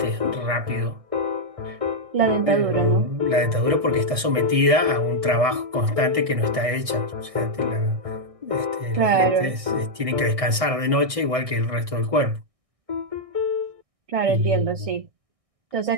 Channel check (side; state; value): left; late; 1.6 ms